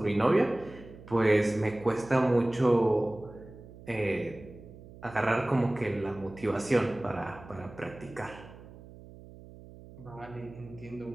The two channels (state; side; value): noise; right; hum, 18 dB below the sound